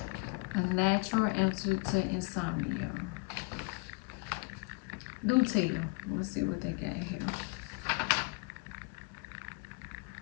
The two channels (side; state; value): right; quieter; 28.6 dB